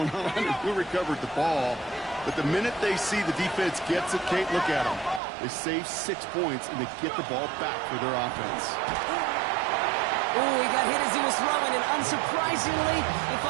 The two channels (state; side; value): drops out; left; at 5.2 s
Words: on and who recovered the ball. But the minute they see the defense gets it, Kate, look at them. They save 6 points, and they get the ball back for their offense. Oh, he got hit as he was throwing, and unsurprisingly, it